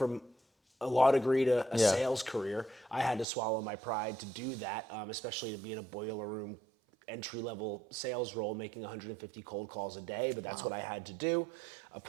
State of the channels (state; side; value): drops out; left; at 3.2 s